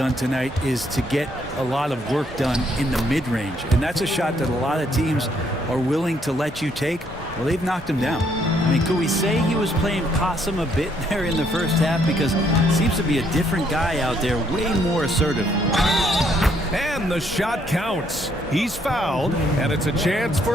tonight is to get a lot of work done in the mid-range. And that's a shot that a lot of teams are willing to let you take. Well, they've knocked him down. I mean, could we say he was playing possum a bit there in the first half? Because it seems to be a different guy out there, way more assertive. And the shot counts. He's fouled, and it's a chance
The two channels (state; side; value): normal; both; correlation 0.69